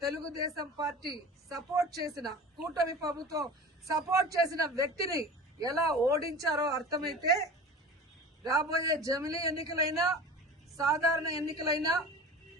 తెలుగుదేశం పార్టీ సపోర్ట్ చేసిన కూటమి ప్రభుత్వం సపోర్ట్ చేసిన వ్యక్తిని ఎలా ఓడించారో అర్థమైతే రాబోయే జమిలీ ఎన్నికలైనా సాధారణ ఎన్నికలైనా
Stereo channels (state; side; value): normal; both; correlation 0.36